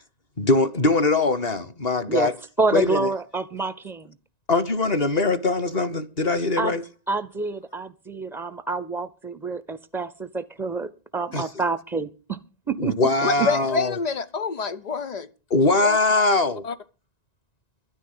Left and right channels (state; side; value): late; right; 1.9 ms